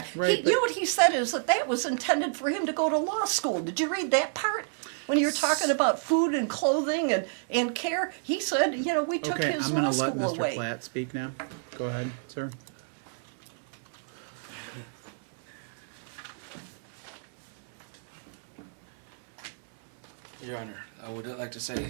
Right, what he said is that was intended for him to go to law school. Did you read that part? When you were talking about food and clothing and care, he said, we took his law school away. I'm going to let Mr. Platt speak now. Go ahead, sir. Your Honor, I would like to say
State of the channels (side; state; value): left; silent; 58 dB below the other